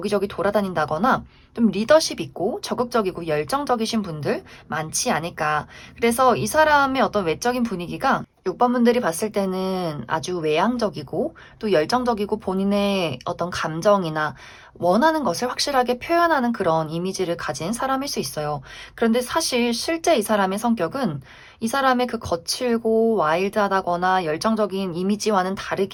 돌아다닌다거나 좀 리더십 있고 적극적이고 열정적이신 분들 많지 않을까. 그래서 이 사람의 어떤 외적인 분위기가 6번 분들이 봤을 때는 아주 외향적이고 또 열정적이고 본인의 어떤 감정이나 원하는 것을 확실하게 표현하는 그런 이미지를 가진 사람일 수 있어요. 그런데 사실 실제 이 사람의 성격은 이 사람의 그 거칠고 와일드하다거나 열정적인 이미지와는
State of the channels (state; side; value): identical; both; correlation 1.00